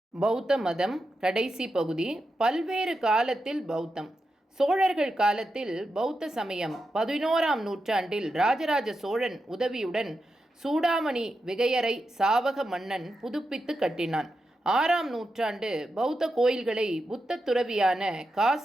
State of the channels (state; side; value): normal; both; correlation 0.88